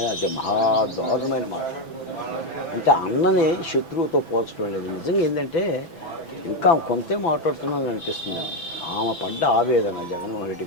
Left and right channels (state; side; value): late; right; 6.0 ms